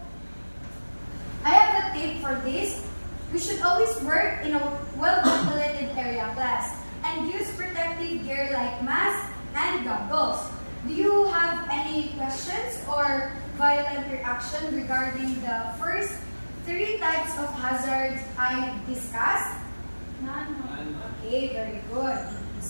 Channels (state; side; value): inverted; both; correlation -1.00